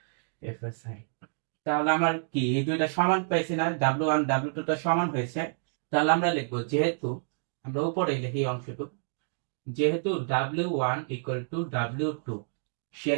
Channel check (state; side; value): silent; left; digital silence